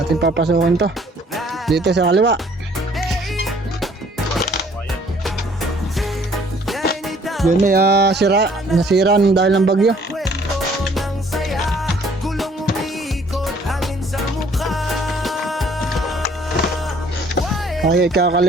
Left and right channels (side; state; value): both; normal; correlation 0.59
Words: Ating papasukin to dito sa kaliwa. Yun may nasira dahil ng bagyo. Okay,